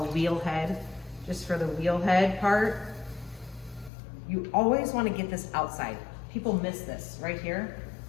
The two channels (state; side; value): drops out; right; at 3.9 s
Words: a wheel head, just for the wheel head part. You always want to get this outside. People miss this right here.